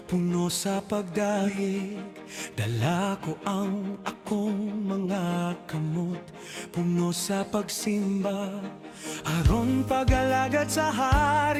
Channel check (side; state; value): both; identical; correlation 1.00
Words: puno sa pagdahig. Dala ko ang akong mga kamot, puno sa pagsimba. Aron pag-alagad sa